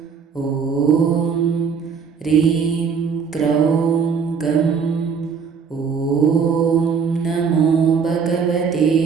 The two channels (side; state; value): left; quieter; 6.1 dB